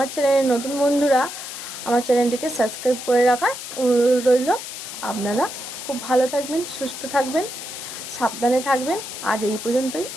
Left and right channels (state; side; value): noise; left; hiss, 9 dB below the sound